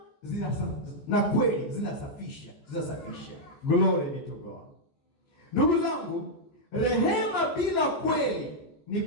na kweli zinasafisha. Glory be to God. Ndugu zangu, rehema bila kweli ni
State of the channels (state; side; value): late; right; 14 ms